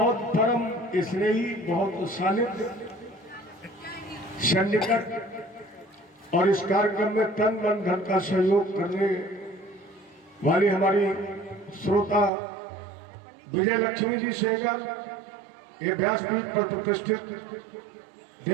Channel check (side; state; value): left; drops out; at 12.3 s